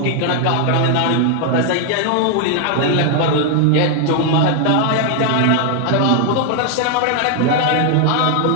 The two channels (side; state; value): both; different; correlation 0.00